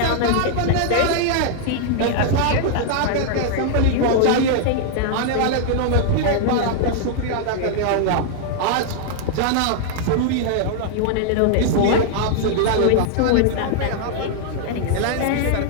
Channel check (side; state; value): both; different; correlation -0.01